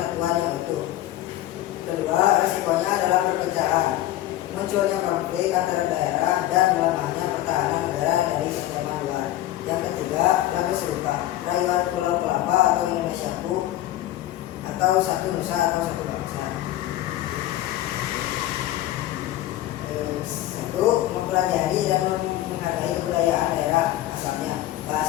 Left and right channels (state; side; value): quieter; right; 14.3 dB